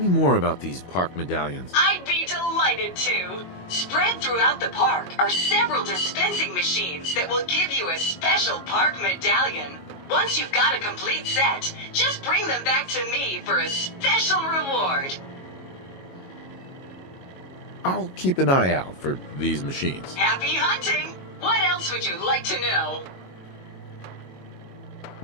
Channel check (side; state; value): right; late; 22 ms